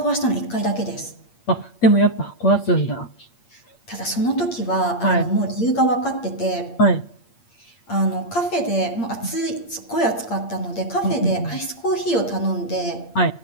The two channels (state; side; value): late; right; 8.6 ms